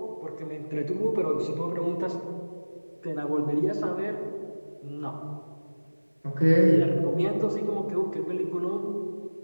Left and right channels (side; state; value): both; inverted; correlation -1.00